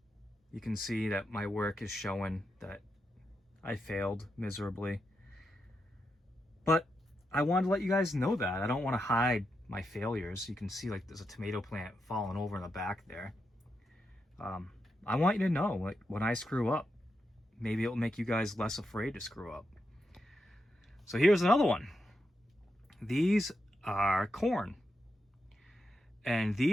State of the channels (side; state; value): both; normal; correlation 0.85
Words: you can see that my work is showing that I failed miserably. But I wanted to let you guys know that. I don't want to hide my failures. You can see like there's a tomato plant falling over in the back there. I want you to know, like, when I screw up, maybe it'll make you guys less afraid to screw up. So here's another one. These are corn. And